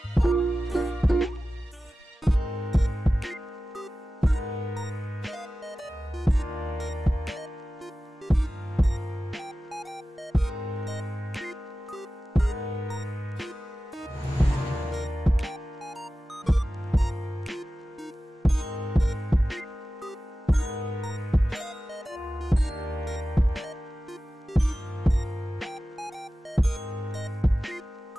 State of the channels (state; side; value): normal; both; correlation 0.95